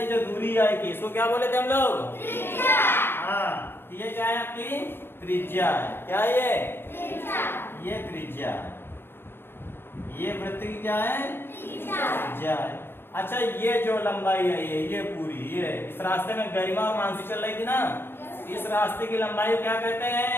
जो दूरी आई थी इसको क्या बोले थे हम लोग? हाँ, ये क्या है आपकी? त्रिज्या है। क्या है ये त्रिज्या है। ये वृत्त की क्या है? त्रिज्या है। अच्छा, ये जो लंबाई है ये पूरी, ये इस रास्ते में गरिमा और मानसी चल रही थी ना, इस रास्ते की लंबाई क्या कहते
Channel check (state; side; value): late; right; 0.11 ms